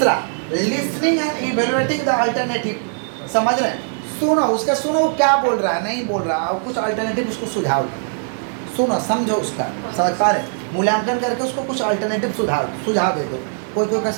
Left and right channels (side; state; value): left; silent; digital silence